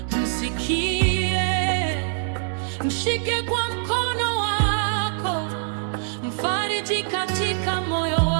msikie, mshike kwa mkono wako, mfariji katika moyo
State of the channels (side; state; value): left; silent; digital silence